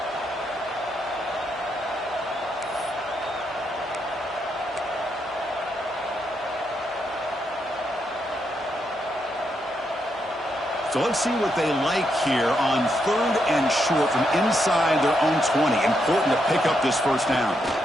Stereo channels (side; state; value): both; normal; correlation 0.80